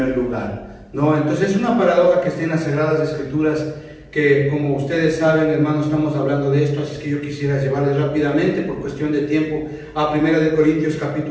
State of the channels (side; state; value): both; identical; correlation 1.00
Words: lugar, ¿no? Entonces es una paradoja que está en las Sagradas Escrituras, que, como ustedes saben, hermanos, estamos hablando de esto, así que yo quisiera llevarles rápidamente, por cuestión de tiempo, a 1 Corintios